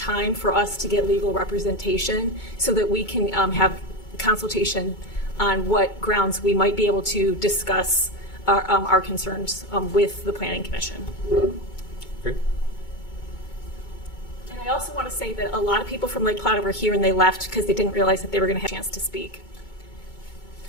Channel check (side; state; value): right; late; 2.2 ms